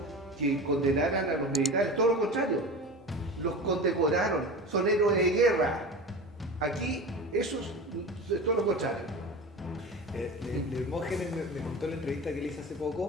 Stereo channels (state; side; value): normal; both; correlation 0.31